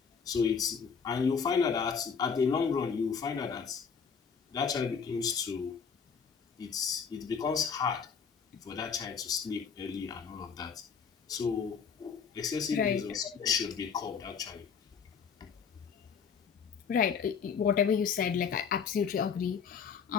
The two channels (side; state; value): right; quieter; 6.4 dB